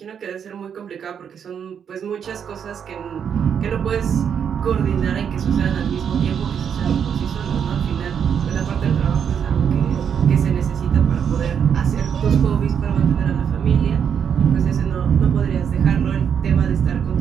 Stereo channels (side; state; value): left; quieter; 7.8 dB